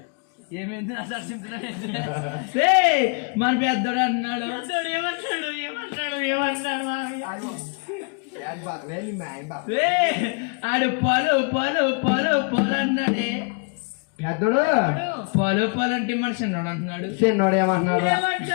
ఏమైంది నా మన పెద్దోడు అంటున్నాడు ఆడు పొలు పొలు పొలు పొలు అన్నాడే పెద్దోడు పొలు పొలు అంటే మన చిన్నోడు అంటున్నాడు. చిన్నోడు ఏమంటున్నాడు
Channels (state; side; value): quieter; right; 36.2 dB